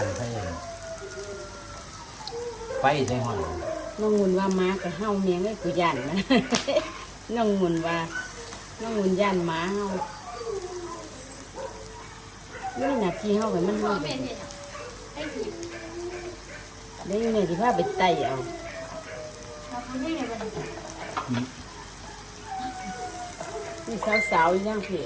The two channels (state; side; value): identical; both; correlation 1.00